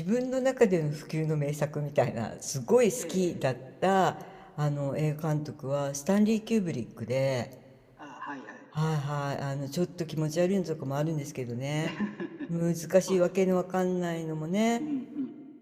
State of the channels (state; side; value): identical; both; correlation 1.00